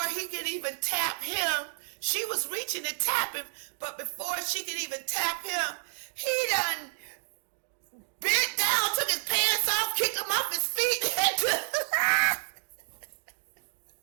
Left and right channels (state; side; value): silent; left; digital silence